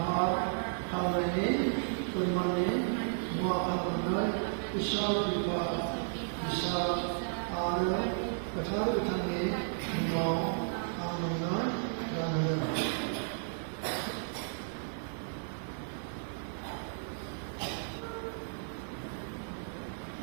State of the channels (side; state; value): left; silent; digital silence